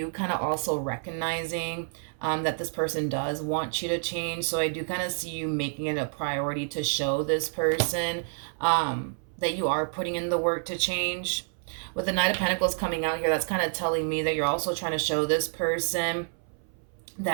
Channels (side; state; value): left; silent; 59 dB below the other